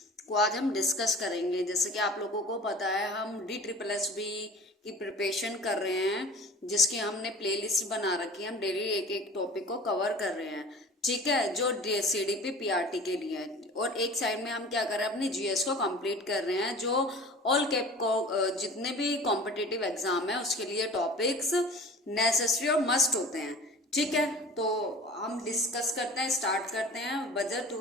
को आज हम डिस्कस करेंगे। जैसे कि आप लोगों को पता है, हम DSSB की प्रिपरेशन कर रहे हैं, जिसकी हमने प्लेलिस्ट बना रखी है। हम डेली एक एक टॉपिक को कवर कर रहे हैं, ठीक है, जो CDP PRT के लिए है। और एक साइड में हम क्या कर रहे हैं, अपनी GS को कंप्लीट कर रहे हैं, जो ऑल कैप को जितने भी कॉम्पिटिटिव एग्जाम है उसके लिए टॉपिक्स नेसेसरी और मस्ट होते हैं, ठीक है। तो हम डिस्कस करते हैं, स्टार्ट करते हैं बजट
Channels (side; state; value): both; normal; correlation 0.41